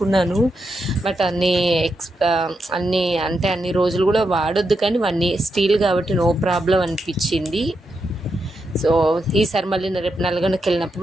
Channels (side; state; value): both; normal; correlation 0.84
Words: బట్ అన్ని రోజులు కూడా వాడొద్దు, కానీ స్టీల్ కాబట్టి నో ప్రాబ్లం అనిపించింది. సో ఈసారి మళ్ళీ రేపు నల్గొండకి వెళ్ళినప్పుడు